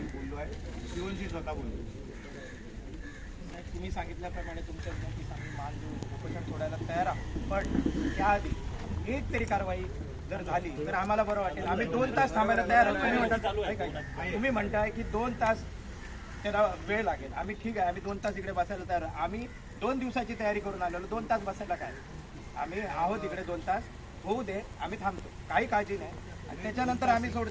बोललो आहे, शिवनशी स्वतः बोललो. तुम्ही सांगितल्याप्रमाणे तुमच्या विनंतीस आम्ही मान देऊन उपोषण सोडायला तयार आहोत. पण त्याआधी एक तरी कारवाई जर झाली तर आम्हाला बरं वाटेल. आम्ही 2 तास थांबायला तयार आहोत. तुम्ही म्हणताय की 2 तास त्याला वेळ लागेल. आम्ही ठीक आहे, आम्ही 2 तास इकडे बसायला तयार. आम्ही 2 दिवसाची तयारी करून आलेलो, 2 तास बसायला काय, आम्ही आहोत इकडे. 2 तास होऊ दे, आम्ही थांबतो, काही काळजी नाही. आणि त्याच्यानंतर आम्ही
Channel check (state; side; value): identical; both; correlation 1.00